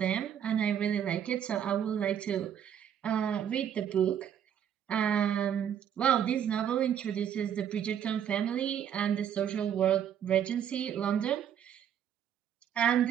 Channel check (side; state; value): left; quieter; 9.2 dB